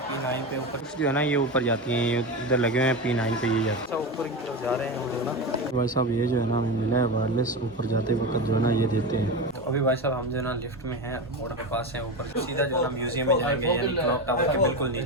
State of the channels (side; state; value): both; normal; correlation 0.20